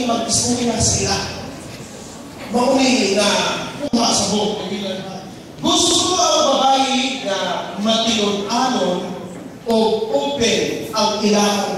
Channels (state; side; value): identical; both; correlation 1.00